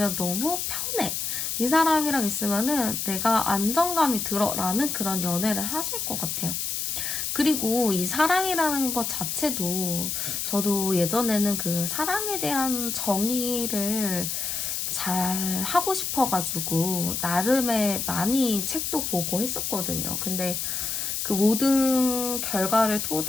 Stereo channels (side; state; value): left; noise; hiss, 2 dB below the sound